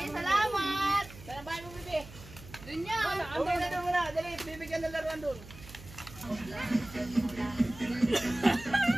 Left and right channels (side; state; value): right; noise; hum, 17 dB below the sound